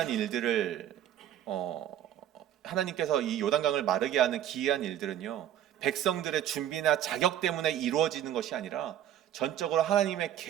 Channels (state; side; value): quieter; left; 11.2 dB